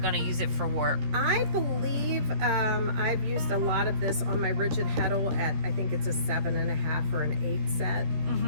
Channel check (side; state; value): left; late; 13 ms